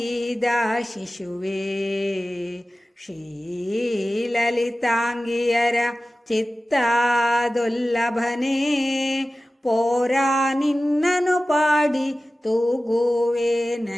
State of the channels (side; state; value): both; normal; correlation 0.96